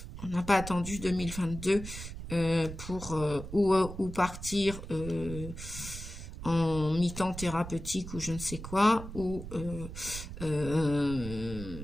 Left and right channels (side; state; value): right; noise; rumble, 10 dB below the sound